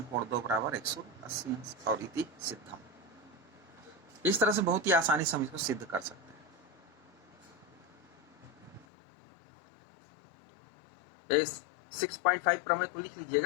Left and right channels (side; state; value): right; drops out; at 8.8 s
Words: कोण 2 बराबर 180 अंश और इति सिद्धम। इस तरह से बहुत ही आसानी से हम इसको सिद्ध कर सकते हैं। इस 6.5 प्रमेय को लिख